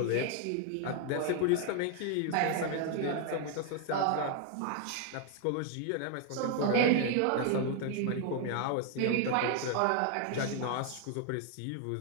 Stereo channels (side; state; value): both; different; correlation 0.00